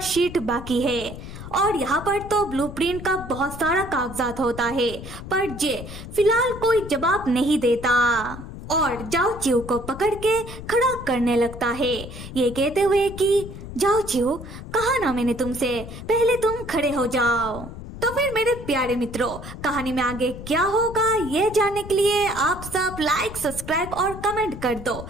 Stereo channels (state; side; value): noise; left; rumble, 11 dB below the sound